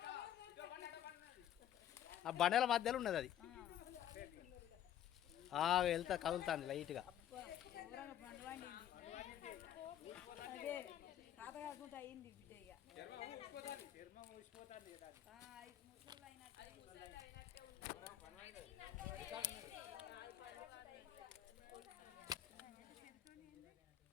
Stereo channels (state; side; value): quieter; right; 11.1 dB